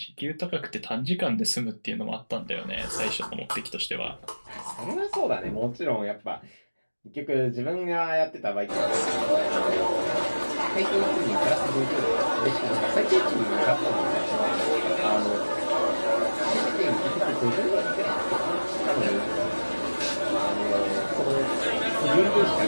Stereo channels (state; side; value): inverted; both; correlation -1.00